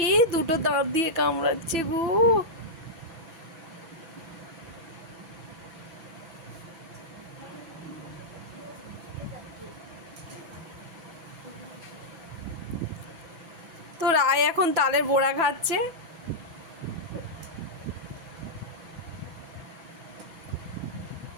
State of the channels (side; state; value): left; late; 6.0 ms